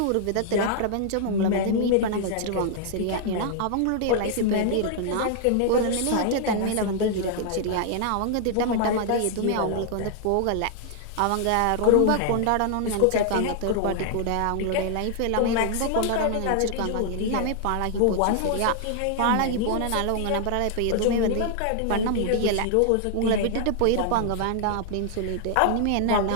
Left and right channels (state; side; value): different; both; correlation 0.00